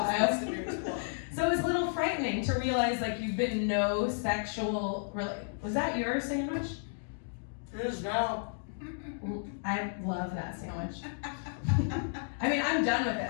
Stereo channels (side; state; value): right; silent; digital silence